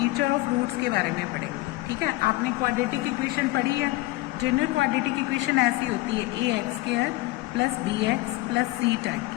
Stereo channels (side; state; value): right; quieter; 19.5 dB